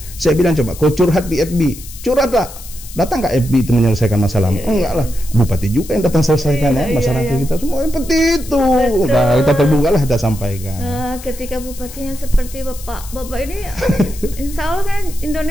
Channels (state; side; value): noise; left; hiss, 16 dB below the sound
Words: Saya bilang coba kau curhat di FB, curhatlah Datang nggak FB itu menyelesaikan masalah? Enggak lah, bupati juga yang datang selesaikan masyarakat kita semua seperti itu. Nah, kita terbuka lah, kita sampaikan. Ketika bupatinya seperti bapak ini, insya Allah kan